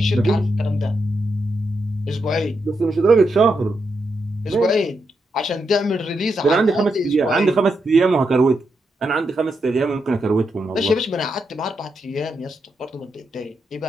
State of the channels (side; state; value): both; normal; correlation 0.83